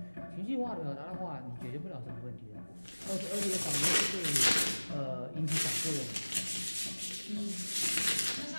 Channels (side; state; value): both; inverted; correlation -1.00